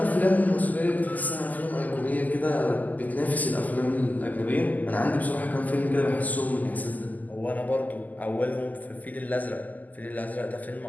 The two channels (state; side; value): late; right; 0.081 ms